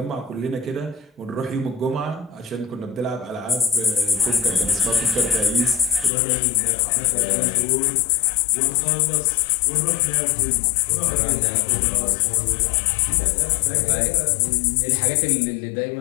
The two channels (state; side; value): drops out; right; at 6.1 s